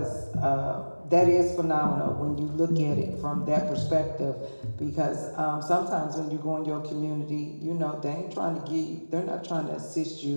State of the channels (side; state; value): both; inverted; correlation -1.00